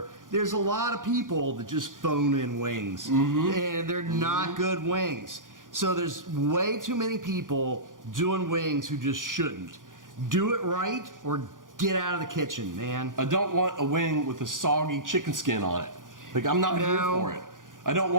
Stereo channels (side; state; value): left; late; 0.89 ms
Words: there's a lot of people that just phone in wings, and they're not good wings. So there's way too many people doing wings who just shouldn't. Do it right or get out of the kitchen, man. I don't want a wing with a soggy chicken skin on it. Like, I'm not here No. for it. I don't